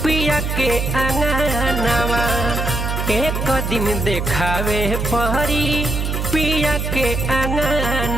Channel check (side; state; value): right; noise; hum, 2 dB below the sound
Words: पिया के अंगनवा, एक दिन देखावे पड़ी पिया के